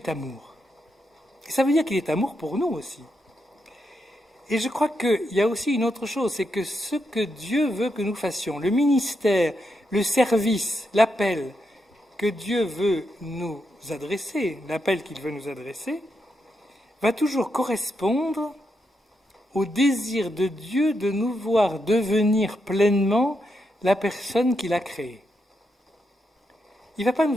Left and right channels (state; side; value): normal; both; correlation 0.83